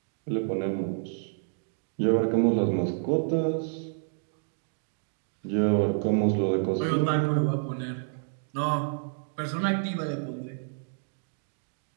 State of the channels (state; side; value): silent; left; digital silence